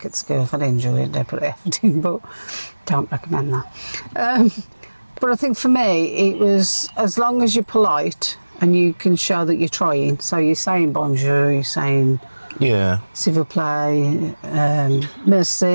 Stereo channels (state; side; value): inverted; both; correlation -1.00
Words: at school. If I didn't enjoy it, they put effort in, but don't recommend that. But I think for me, it was as long as you're polite and you can show that you're trying. So you're saying bonjour, you're saying s'il vous plaît,